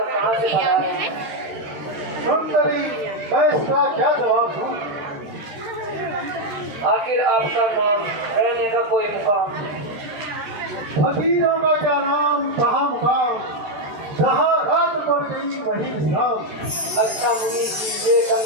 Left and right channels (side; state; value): left; late; 13 ms